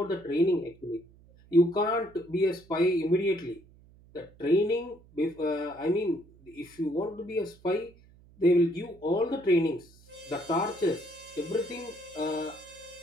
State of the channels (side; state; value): right; noise; hum, 26 dB below the sound